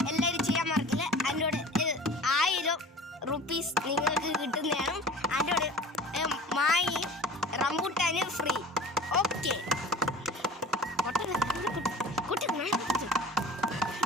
എല്ലാവരും ചെയ്യാൻ മറക്കില്ല. അതിനോട് 1000 റുപ്പീസ് നിങ്ങൾക്ക് കിട്ടുന്നതാണ്. അതിനോട് മായി റംബൂട്ടാന് ഫ്രീ. ഓക്കെ കുട്ടി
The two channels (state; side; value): normal; both; correlation 0.40